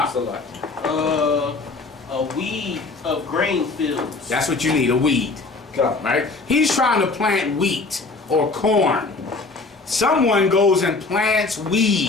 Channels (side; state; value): right; quieter; 3.7 dB